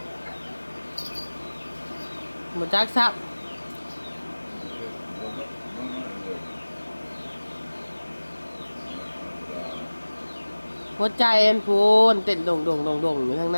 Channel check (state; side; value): inverted; both; correlation -1.00